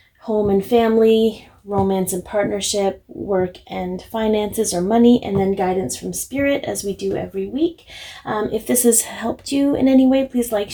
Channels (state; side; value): identical; both; correlation 1.00